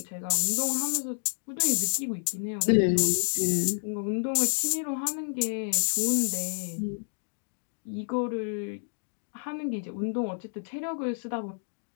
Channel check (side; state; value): right; silent; digital silence